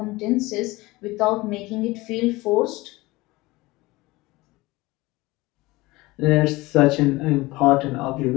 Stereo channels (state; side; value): quieter; right; 20.9 dB